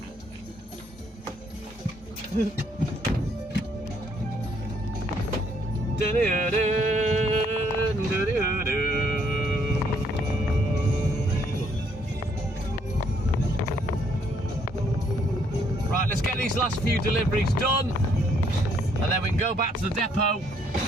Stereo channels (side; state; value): both; normal; correlation 0.68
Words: Right, let's get these last few deliveries done, and then we can go back to the depot